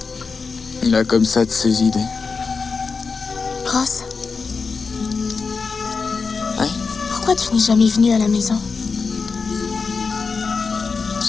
Il a comme ça de ses idées. Ross? Oui? Pourquoi tu n'es jamais venu à la maison?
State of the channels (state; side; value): quieter; right; 4.8 dB